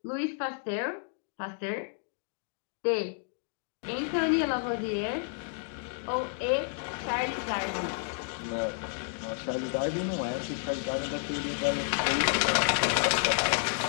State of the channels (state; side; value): silent; right; 57 dB below the other